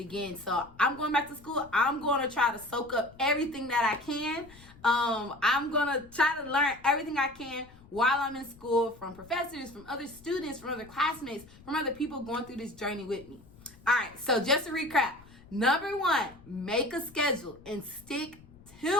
So I'm going back to school. I'm going to try to soak up everything that I can. I'm going to try to learn everything I can while I'm in school, from professors, from other students, from other classmates, from other people going through this journey with me. All right, so just to recap, Number 1, make a schedule and stick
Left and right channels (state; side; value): noise; left; rumble, 23 dB below the sound